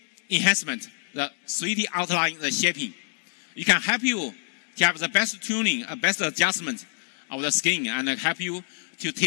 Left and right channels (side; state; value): right; silent; digital silence